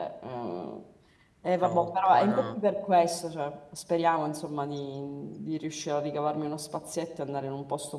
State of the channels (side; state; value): both; identical; correlation 1.00